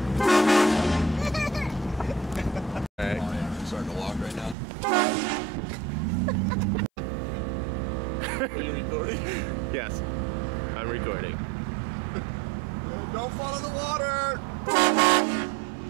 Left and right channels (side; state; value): left; drops out; at 4.5 s